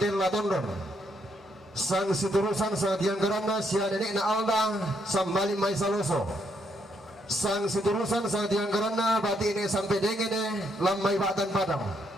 tondon sang seterusan sa tiang garanda sia nenek na alda sambali mai saloso sang seterusan sa tiang garanda bati ini sampai dengene lamai batan padang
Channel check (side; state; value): both; normal; correlation 0.75